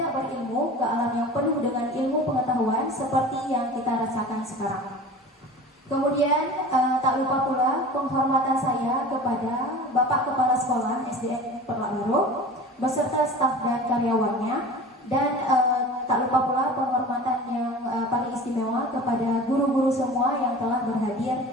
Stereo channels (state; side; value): normal; both; correlation 0.38